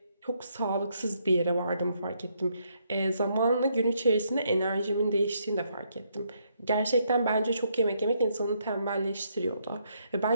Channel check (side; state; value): both; inverted; correlation -0.74